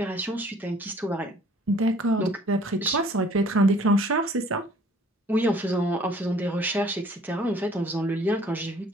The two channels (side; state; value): both; normal; correlation 0.55